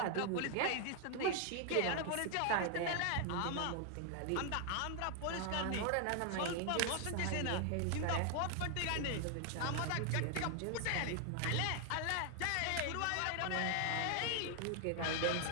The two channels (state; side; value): different; both; correlation 0.00